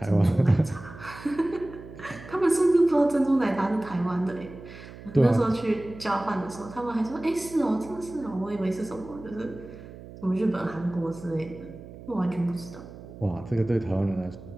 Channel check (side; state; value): right; noise; hum, 16 dB below the sound